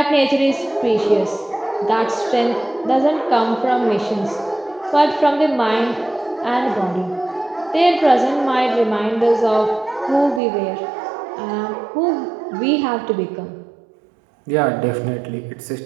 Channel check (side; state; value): left; drops out; at 10.4 s